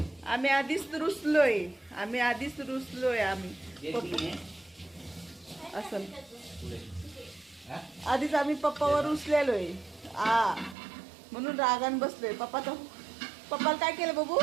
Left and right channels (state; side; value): drops out; left; at 10.8 s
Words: आम्ही आधीच रुसलोय. असं आधीच आम्ही पप्पावर रुसलेलोय. म्हणून रागान बसलोय. पप्पाला काय केलं बाबू?